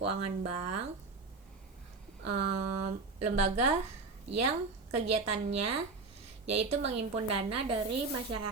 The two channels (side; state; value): left; quieter; 4.0 dB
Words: bank, lembaga yang kegiatannya yaitu menghimpun dana dari